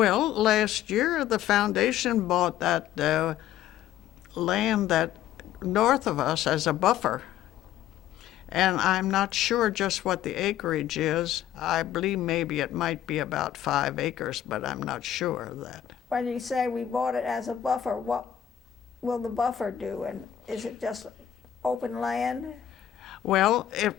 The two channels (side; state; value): right; quieter; 11.1 dB